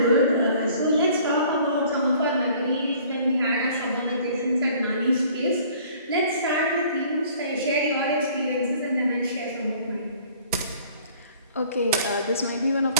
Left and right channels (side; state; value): both; inverted; correlation -0.54